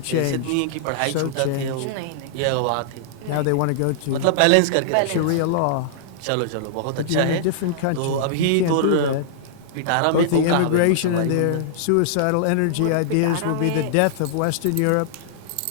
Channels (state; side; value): different; both; correlation -0.01